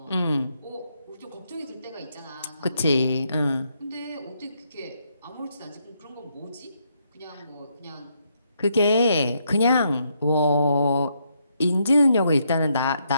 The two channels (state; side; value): inverted; both; correlation -0.76